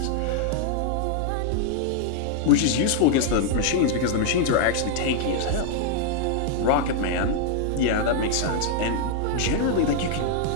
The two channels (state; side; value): different; both; correlation 0.00